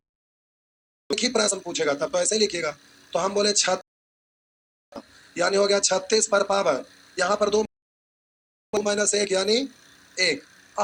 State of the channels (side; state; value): both; identical; correlation 1.00